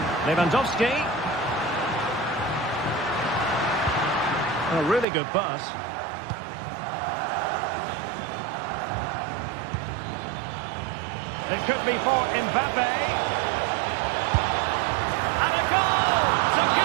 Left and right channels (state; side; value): drops out; left; at 5.1 s